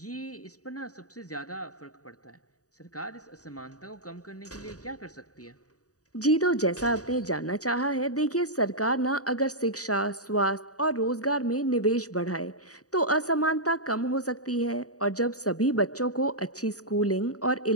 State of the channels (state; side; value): late; right; 0.66 ms